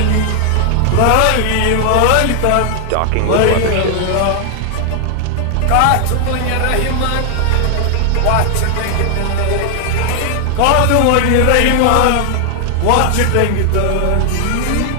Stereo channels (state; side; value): different; both; correlation 0.00